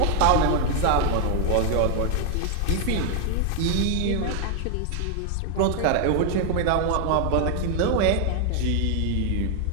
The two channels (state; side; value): different; both; correlation 0.01